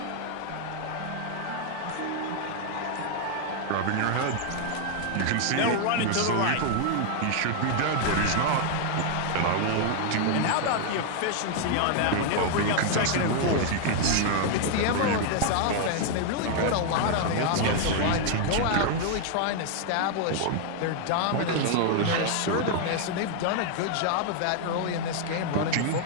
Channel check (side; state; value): both; different; correlation 0.00